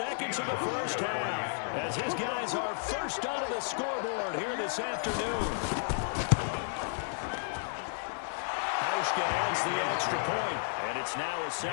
of the first half as his guys are first onto the scoreboard here this afternoon. Hauschka adds the extra point, and it's now a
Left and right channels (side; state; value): right; silent; digital silence